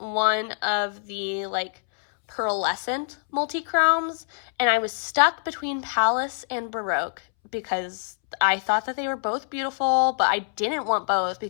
of the like pearlescent multi-chromes, and I was stuck between Palace and Baroque because I thought that they were both beautiful, but I didn't want both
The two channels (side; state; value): right; silent; 62 dB below the other